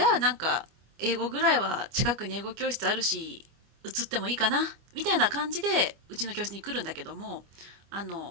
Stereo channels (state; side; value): late; left; 25 ms